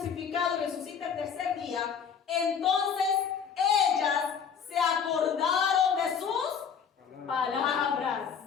y resucite el tercer día. Entonces ellas se acordaron de sus palabras.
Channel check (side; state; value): right; quieter; 7.0 dB